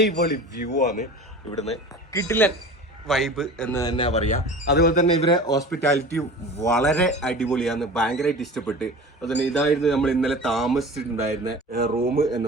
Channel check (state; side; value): normal; both; correlation 0.37